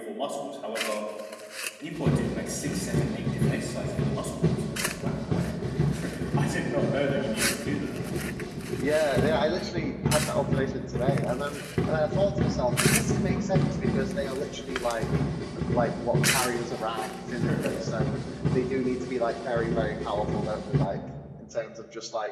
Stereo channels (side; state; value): both; identical; correlation 1.00